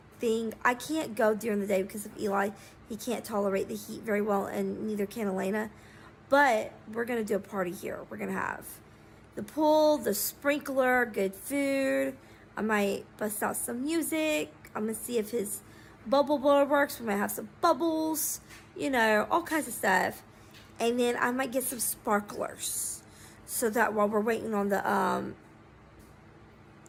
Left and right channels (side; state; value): both; identical; correlation 1.00